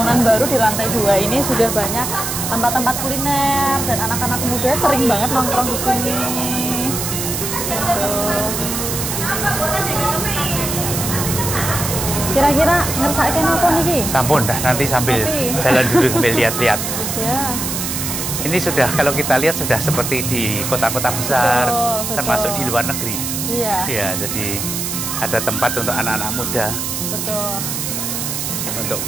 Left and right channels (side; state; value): right; noise; hiss, 3 dB below the sound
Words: baru di lantai 2 ini sudah banyak tempat-tempat kuliner dan anak-anak muda sering banget nongkrong di sini. Tuh. Kira-kira ngersake napa niki? Sampun dah, nanti sambil Kopi. jalan dulu sambil lihat-lihat. Ya. Ini sudah kalau kita lihat sudah seperti di kota-kota besar, Betul. termasuk di luar negeri. Iya, Ya, jadi ada tempat untuk anak-anak muda betul. untuk